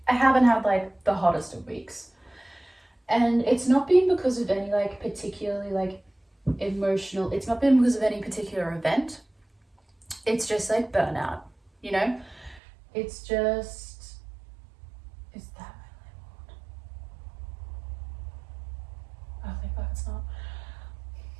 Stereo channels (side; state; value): left; drops out; at 12.6 s